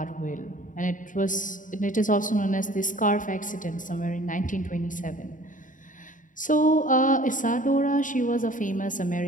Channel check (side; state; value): right; late; 0.38 ms